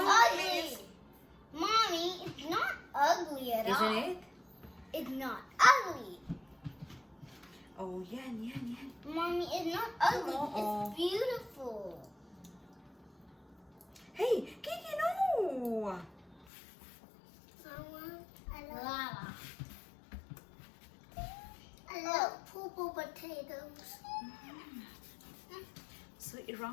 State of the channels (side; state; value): right; drops out; at 16.4 s